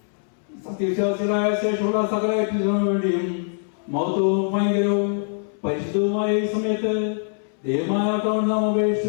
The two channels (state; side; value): silent; right; 63 dB below the other